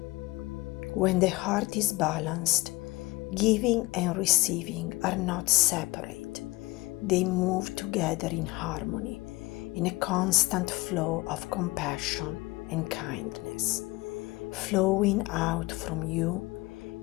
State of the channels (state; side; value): quieter; right; 21.8 dB